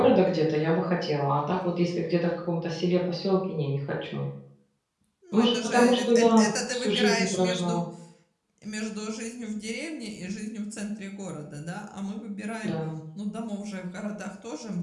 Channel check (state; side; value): identical; both; correlation 1.00